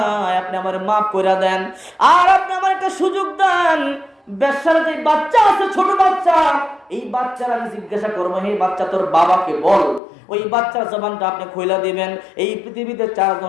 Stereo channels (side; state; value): right; drops out; at 10.0 s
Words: আপনি আমার মাফ করে দেন। আর আপনি আমার একটা সুযোগ দেন, বেশ্যার যে বাচ্চা আছে ছোট বাচ্চা, এই বাচ্চার আমি জিজ্ঞাসা করবো হে বাচ্চা তোর বাবাকে বল। ওই বাচ্চার জবানটা আপনি খুইলা দিবেন। এই পৃথিবীতে 4